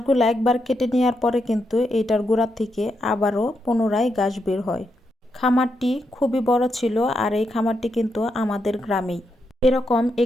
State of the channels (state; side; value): normal; both; correlation 0.82